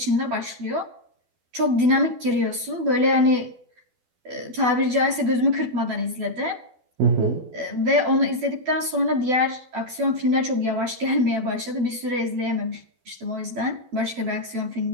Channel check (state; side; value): late; left; 12 ms